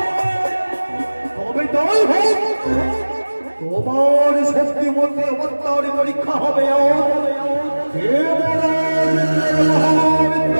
তবে তাই হোক, তোমার শক্তি মধ্যে অবতার পরীক্ষা হবে।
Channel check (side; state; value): both; inverted; correlation -1.00